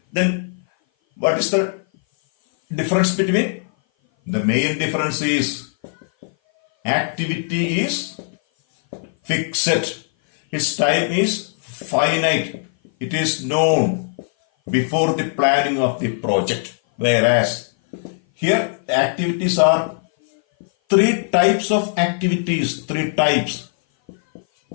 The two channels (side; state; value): right; silent; 57 dB below the other